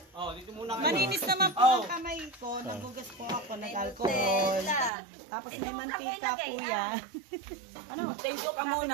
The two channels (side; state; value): left; drops out; at 4.9 s